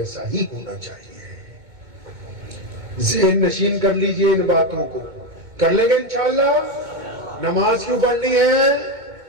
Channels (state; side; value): late; left; 2.2 ms